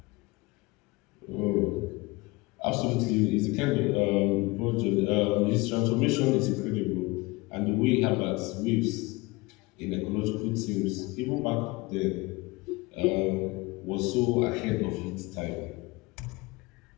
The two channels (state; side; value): quieter; right; 23.5 dB